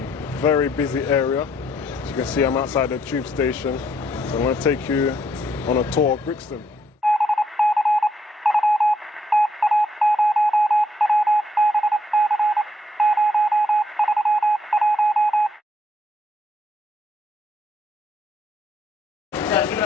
very busy area. As you can see, I'm outside the tube station. So I'm going to take you on a tour of Brixton.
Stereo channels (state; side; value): normal; both; correlation 0.72